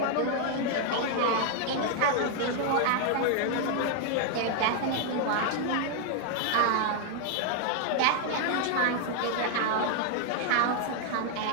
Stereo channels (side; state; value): both; different; correlation 0.00